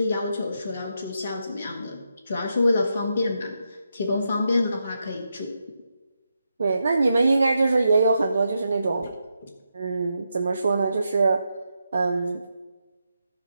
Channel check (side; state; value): both; inverted; correlation -0.84